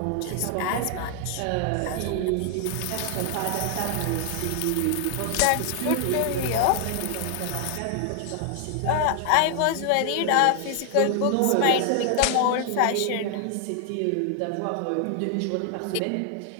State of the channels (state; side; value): different; both; correlation 0.00